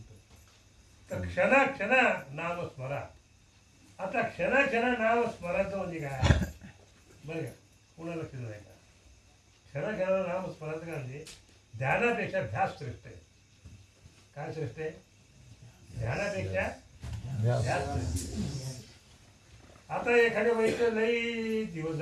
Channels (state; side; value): identical; both; correlation 1.00